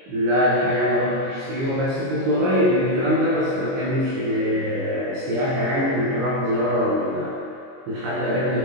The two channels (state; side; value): late; left; 22 ms